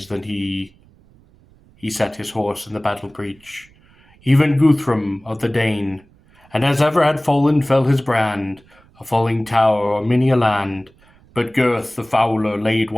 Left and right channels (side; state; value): right; noise; rumble, 29 dB below the sound